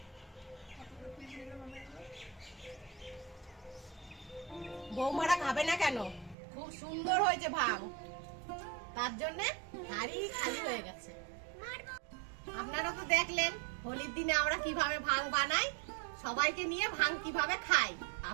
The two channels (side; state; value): left; drops out; at 6.4 s